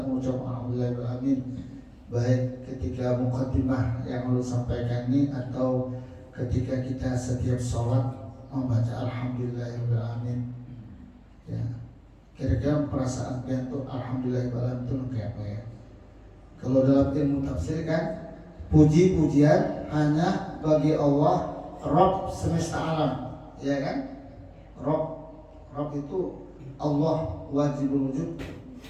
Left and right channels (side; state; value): both; identical; correlation 1.00